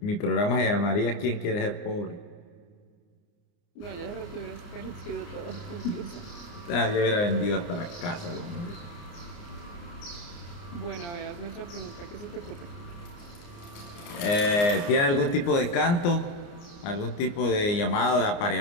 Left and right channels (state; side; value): late; right; 29 ms